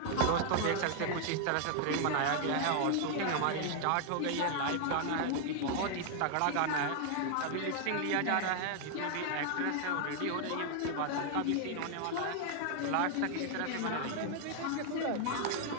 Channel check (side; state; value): both; different; correlation 0.00